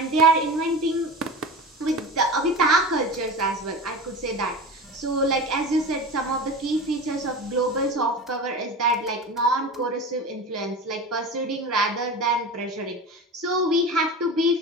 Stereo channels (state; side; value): normal; both; correlation 0.30